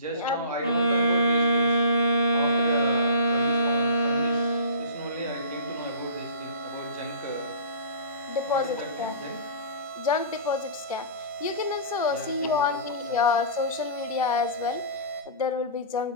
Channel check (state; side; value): inverted; both; correlation -0.39